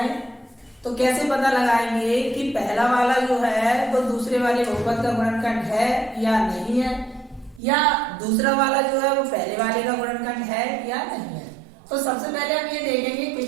तो कैसे पता लगाएंगे कि पहला वाला जो है वो दूसरे वाले बहुपद का गुणनखंड है या नहीं है, या दूसरा वाला जो है वो पहले वाले का गुणनखंड है या नहीं है। तो सबसे पहले हम ये देखेंगे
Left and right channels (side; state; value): left; drops out; at 7.6 s